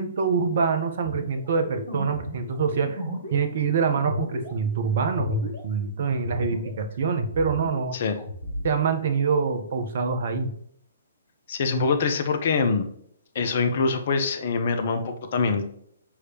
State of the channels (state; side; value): inverted; both; correlation -0.50